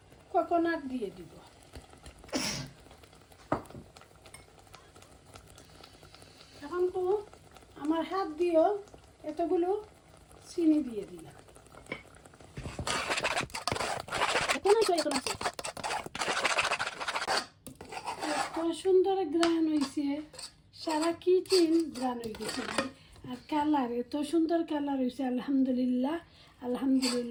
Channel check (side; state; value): both; identical; correlation 1.00